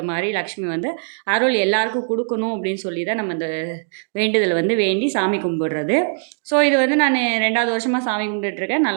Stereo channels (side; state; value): left; silent; digital silence